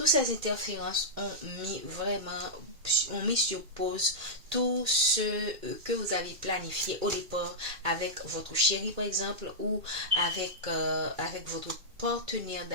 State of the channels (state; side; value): late; left; 2.2 ms